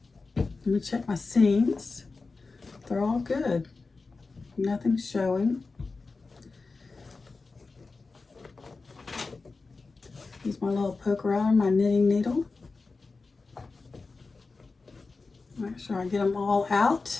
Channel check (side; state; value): right; quieter; 4.0 dB